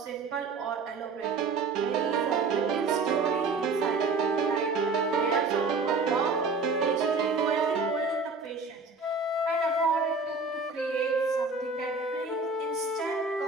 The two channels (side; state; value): left; quieter; 4.1 dB